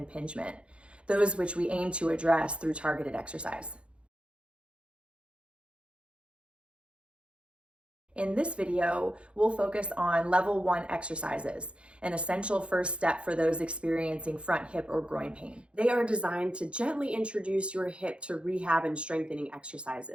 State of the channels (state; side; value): late; left; 0.058 ms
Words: those which we aim to address through targeted exercise. In this video, we'll focus on level 1 exercises, an essential first step for those experiencing front hip or groin pain. They are designed to gently introduce your hip to rehab and strengthening